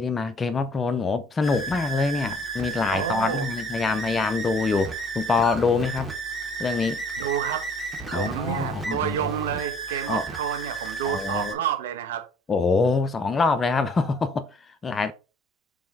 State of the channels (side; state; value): both; normal; correlation 0.57